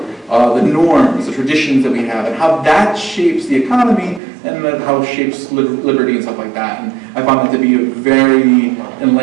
the norms, the traditions that we have, and how that shapes the economy, and then how it shapes liberty and stuff like that. And I found that to be a very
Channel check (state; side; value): drops out; left; at 4.2 s